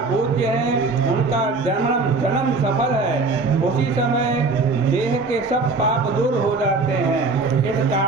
पूज्य हैं, उनका जन्म सफल है। उसी समय देह के सब पाप दूर हो जाते हैं। इस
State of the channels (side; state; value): left; quieter; 3.8 dB